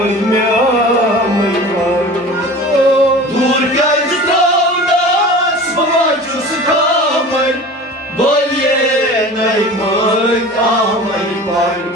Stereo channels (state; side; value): normal; both; correlation 0.38